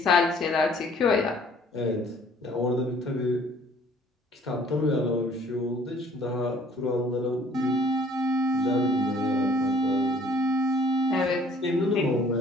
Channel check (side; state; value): both; normal; correlation 0.57